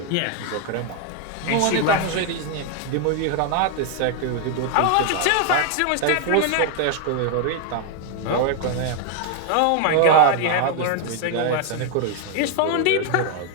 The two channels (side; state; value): both; different; correlation 0.00